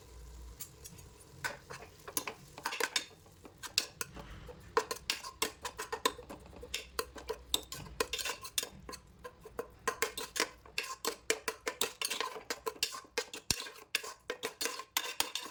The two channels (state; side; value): identical; both; correlation 1.00